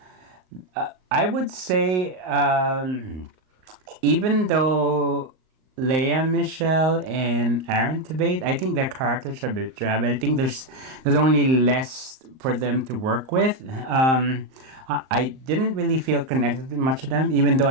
I would say, even though Lea Michele and Aaron Tveit, I think their characters are a bit drab. I think there's only less for them to work with. I didn't really feel connected to much of them, even though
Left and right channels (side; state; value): left; late; 38 ms